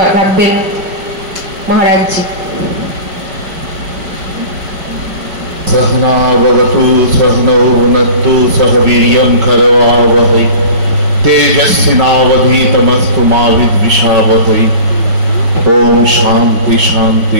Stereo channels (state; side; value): late; left; 5.3 ms